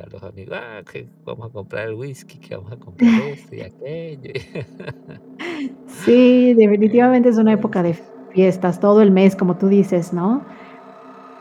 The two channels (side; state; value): both; identical; correlation 1.00